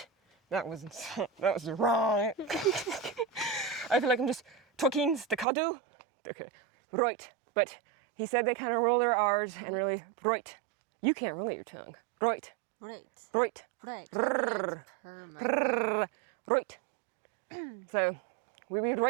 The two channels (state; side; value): drops out; left; at 5.5 s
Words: That was wrong. I feel like I'm just talking staccato. Okay, right, but he said they kind of roll their R's and really right. You can't roll your tongue. Right, Right. right, Right. right. So, we read